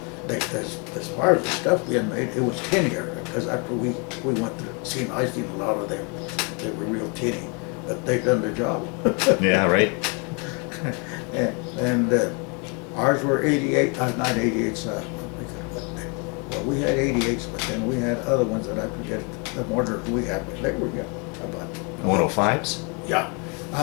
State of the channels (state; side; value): quieter; right; 34.1 dB